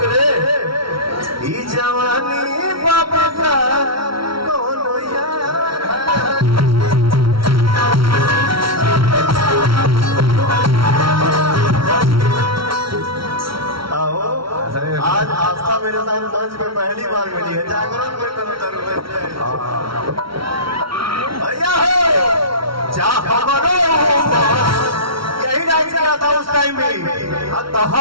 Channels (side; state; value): left; late; 0.74 ms